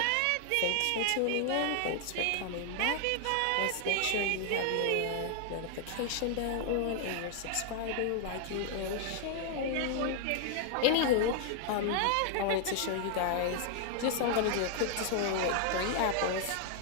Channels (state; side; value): different; both; correlation 0.00